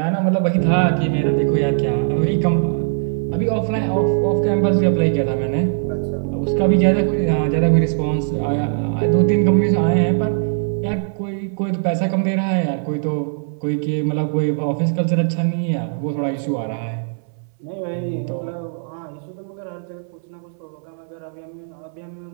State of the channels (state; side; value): silent; left; 62 dB below the other